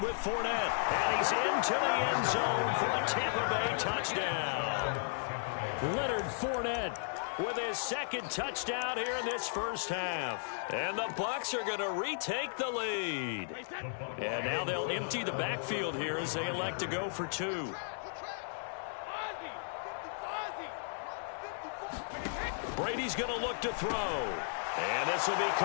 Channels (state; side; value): silent; right; digital silence